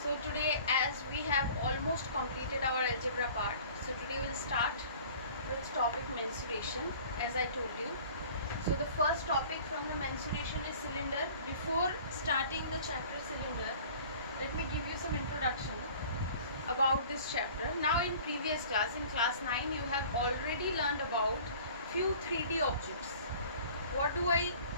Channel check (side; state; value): both; inverted; correlation -0.47